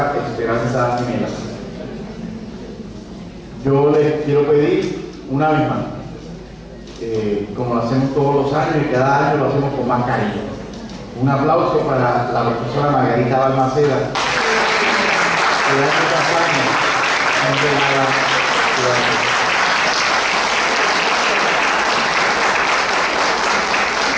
Esperanza gemela. Yo les quiero pedir una vez más, como lo hacemos todos los años y cada año lo hacemos con más cariño, un aplauso para la profesora Margarita Balmaceda, que hace campaña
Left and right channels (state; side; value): identical; both; correlation 1.00